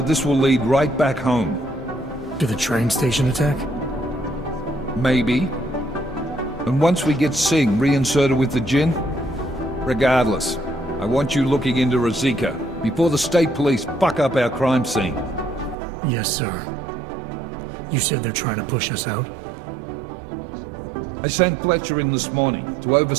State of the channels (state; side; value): drops out; left; at 15.8 s